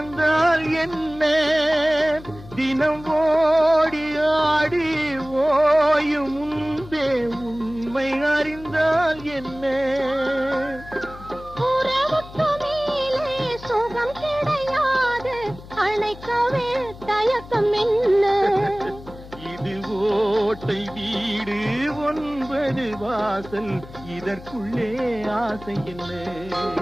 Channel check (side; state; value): left; noise; hum, 17 dB below the sound